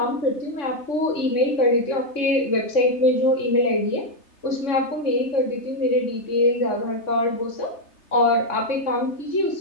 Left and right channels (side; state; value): right; late; 3.3 ms